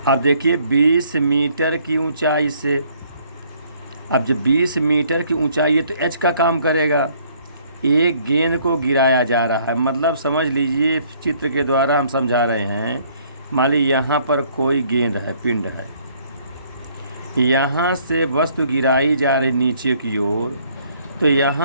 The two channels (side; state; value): both; inverted; correlation -0.63